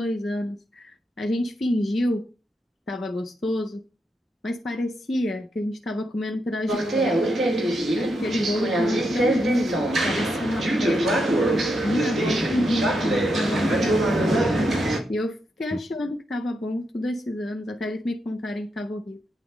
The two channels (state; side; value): normal; both; correlation 0.82